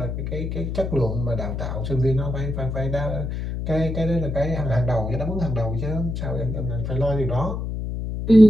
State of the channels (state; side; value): noise; left; hum, 4 dB below the sound